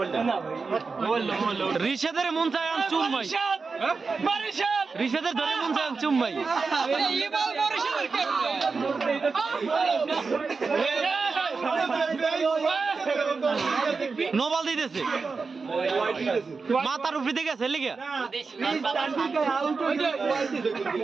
রিশাদের মন চায় চুম্মাই রিশাদের ধরে মন চায় চুম্মাই নোবাল দিতেছে মাথার উপরে দিকে আছে লিখে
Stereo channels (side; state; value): left; quieter; 4.6 dB